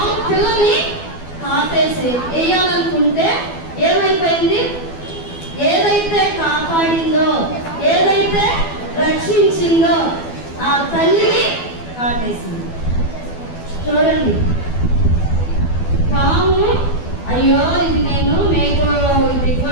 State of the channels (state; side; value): late; right; 12 ms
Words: పిల్లని కాటేసి వేయాలనుకుంటే ఏమైపోయింది, ఏదైతే కాపాడిందో, ఏదైతే రక్షించిందో ఆ తల్లిని కాటేసింది. చూడండి, పాము అయ్యో ఇది నేను మేకు